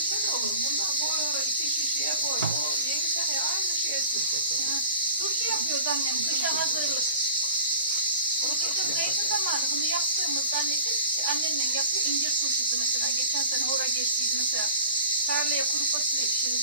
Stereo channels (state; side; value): inverted; both; correlation -0.42